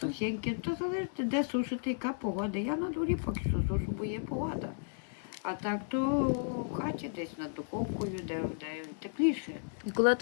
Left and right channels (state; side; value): silent; right; 55 dB below the other